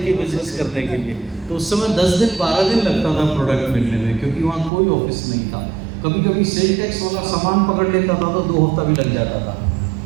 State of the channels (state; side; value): drops out; left; at 4.7 s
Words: बिजनेस करने के लिए। तो उस समय 10 दिन 12 दिन लगता था प्रोडक्ट मिलने में, क्योंकि वहाँ कोई ऑफिस नहीं था। कभी कभी सेल टैक्स वाला सामान पकड़ लेता था तो 2 हफ्ता भी लग जाता था।